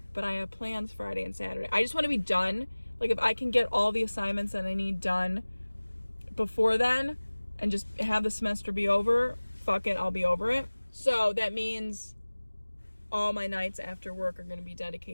but I have plans Friday and Saturday. I just want to be done. Like, if I can get all the assignments that I need done before then and just have the semester be over, fuck it, I'll be over it. So that means all my nights after work are going to be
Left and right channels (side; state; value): both; inverted; correlation -1.00